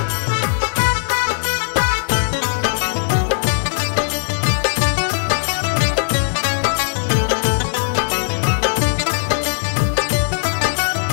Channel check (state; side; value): silent; right; digital silence